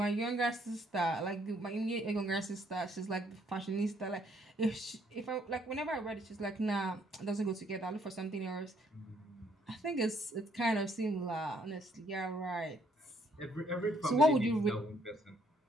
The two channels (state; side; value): normal; both; correlation 0.68